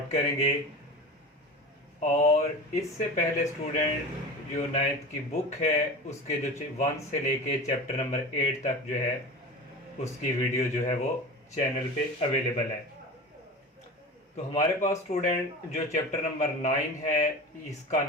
करेंगे। और इससे पहले स्टूडेंट जो नाइन्थ की बुक है उसके जो 1 से लेके चैप्टर नंबर 8 तक जो है उसकी वीडियो जो है वो चैनल पे अवेलेबल है। तो हमारे पास स्टूडेंट जो चैप्टर नंबर 9 है इसका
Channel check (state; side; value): normal; both; correlation 0.32